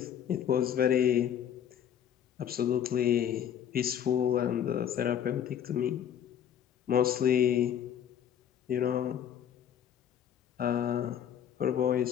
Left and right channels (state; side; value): quieter; right; 9.5 dB